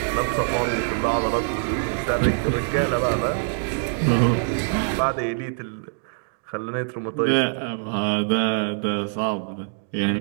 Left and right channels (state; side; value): silent; left; 63 dB below the other